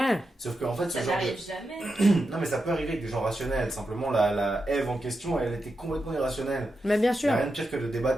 Sauf qu'en fait, ce Ça genre n'arrive de... jamais. Non, mais ça peut arriver avec des gens rationnels. Simplement, la Ève en question, elle était complètement irrationnelle. Mais bien Il n'y sûr. a rien de pire que de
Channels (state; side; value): normal; both; correlation 0.88